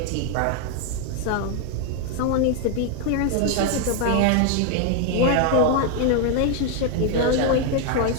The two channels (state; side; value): different; both; correlation 0.00